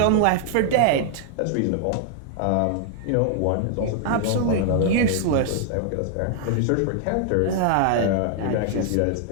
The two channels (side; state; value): both; different; correlation 0.00